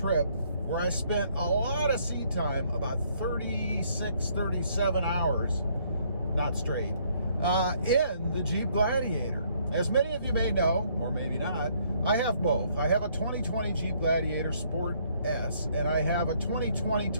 where I spent a lot of seat time, about 36, 37 hours, not straight, in the Jeep Gladiator. As many of you may know, or maybe not, I have both. I have a 2020 Jeep Gladiator Sport S, and I have a 2020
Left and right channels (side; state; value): both; inverted; correlation -0.66